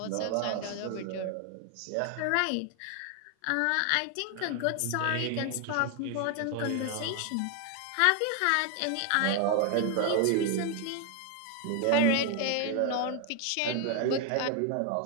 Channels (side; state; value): both; different; correlation 0.01